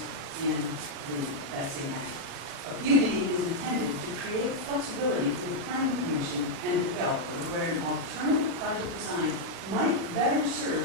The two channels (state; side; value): late; left; 36 ms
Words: in that same act. A PUD is intended to create flexibility for the Planning Commission and the developer where an alternative project design might better